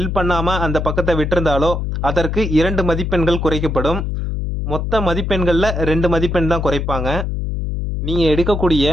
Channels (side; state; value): left; noise; hum, 2 dB below the sound